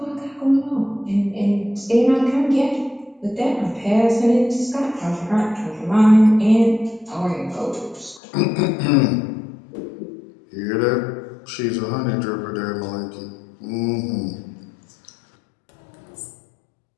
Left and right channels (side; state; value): right; drops out; at 8.2 s